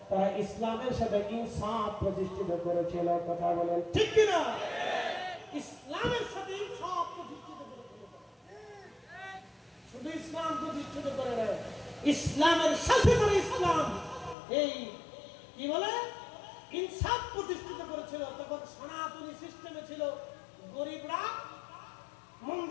তারা ইসলামের সাথে ইনসাফ প্রতিষ্ঠিত করেছিল। কথা বলেন ঠিক কিনা? ইসলামের সাথে ইনসাফ প্রতিষ্ঠিত করেছিল। শুধু ইসলাম প্রতিষ্ঠিত করে নাই, ইসলামের সাথে করে ইসলাম এই কি বলে ইনসাফ প্রতিষ্ঠিত করেছিল। তখন সনাতনী সিস্টেমে ছিল, গরিবরা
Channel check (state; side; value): drops out; right; at 14.4 s